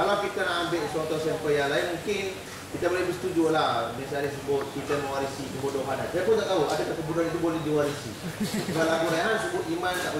kita nak ambil suatu sampel yang lain, mungkin kita boleh bersetuju lah. Misalnya sebut kita mewarisi kebodohan. Saya pun tak tahu adakah kebodohan itu boleh diwarisi. Kalau lagu Rehan sebut iman tak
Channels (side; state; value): both; identical; correlation 1.00